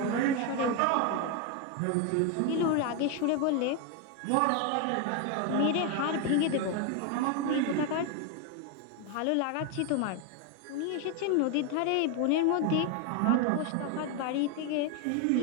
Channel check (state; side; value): different; both; correlation 0.01